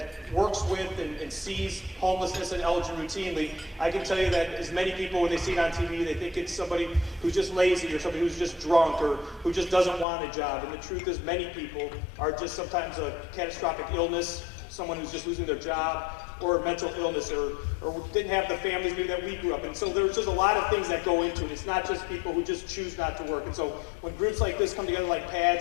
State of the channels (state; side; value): drops out; right; at 10.1 s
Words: works with and sees homelessness in Elgin routinely, I can tell you that as many people, when they see it on TV, they think it's somebody who's just lazy or somebody who's just drunk or who just doesn't want a job. And the truth is, many people are just sometimes a catastrophic illness, someone who's just losing their job, or mental illness, or didn't have the families maybe that we grew up in. So there's just a lot of things that go into it. It's not just people who just choose not to work. And so when groups like this come together, like